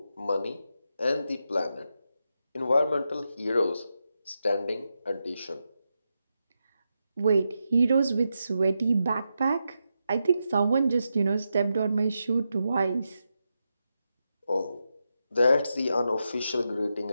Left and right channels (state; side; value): inverted; both; correlation -0.87